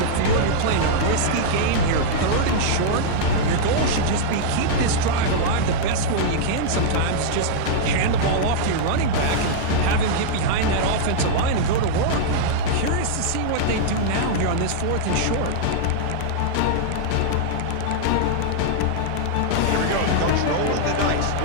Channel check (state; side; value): different; both; correlation -0.02